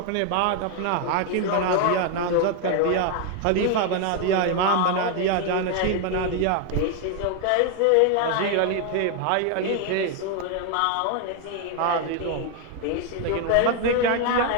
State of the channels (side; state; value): both; different; correlation 0.01